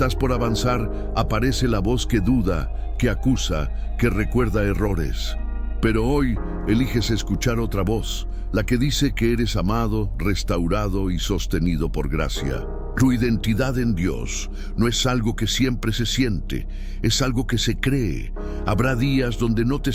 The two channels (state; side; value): identical; both; correlation 1.00